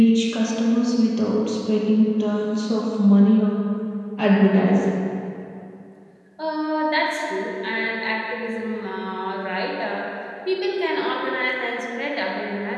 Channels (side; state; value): both; identical; correlation 1.00